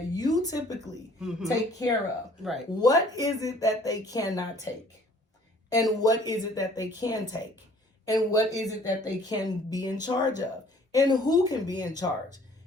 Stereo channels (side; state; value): both; normal; correlation 0.55